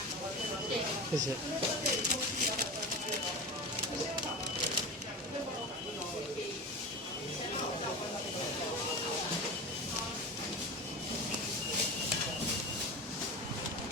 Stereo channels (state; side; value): normal; both; correlation 0.28